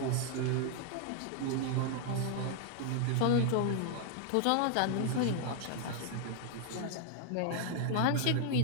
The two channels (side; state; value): both; different; correlation 0.00